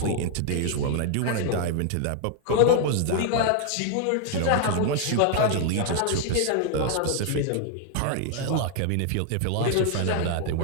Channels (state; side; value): different; both; correlation 0.00